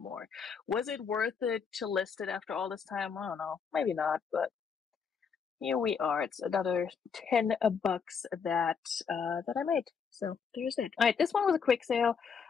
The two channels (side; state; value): right; quieter; 6.3 dB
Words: Was it worth it to list it after all this time? I don't know. Maybe not, but here we are. It's another $10 that I made. So there's it. All right, this one was a quick sale.